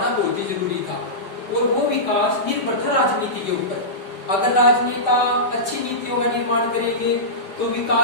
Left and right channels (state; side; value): late; right; 5.0 ms